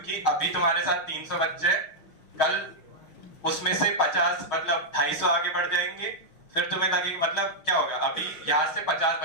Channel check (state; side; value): late; right; 6.4 ms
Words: अभी तुम्हारे साथ 300 बच्चे, कल उसमें से 50 मतलब 250 आगे बढ़ जाएंगे। फिर तुम्हें लगेगा मतलब क्या होगा, अभी यहाँ से 50